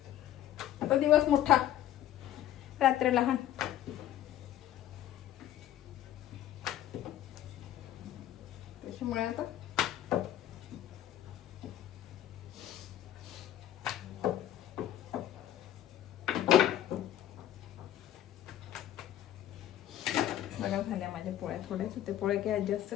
आता दिवस मोठा, रात्र लहान. त्याच्यामुळे आता बघा झाल्या माझ्या पोळ्या. थोड्याच होते पोळ्या, काही जास्त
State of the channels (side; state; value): right; quieter; 12.1 dB